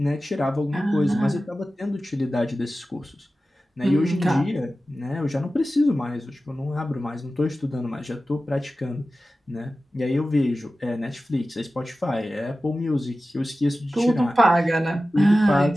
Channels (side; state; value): both; normal; correlation 0.95